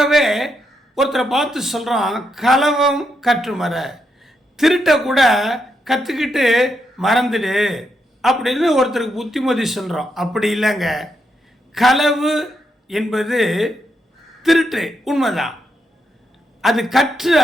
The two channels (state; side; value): normal; both; correlation 0.81